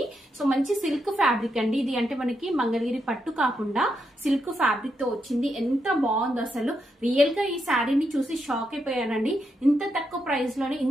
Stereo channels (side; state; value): both; normal; correlation 0.82